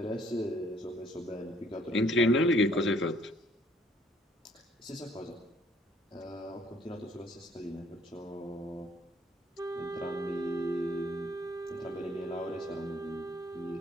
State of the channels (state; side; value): normal; both; correlation 0.62